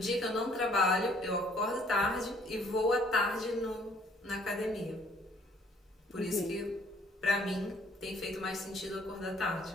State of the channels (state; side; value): normal; both; correlation 0.61